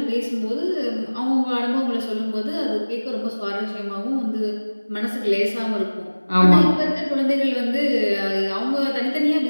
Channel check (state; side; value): inverted; both; correlation -1.00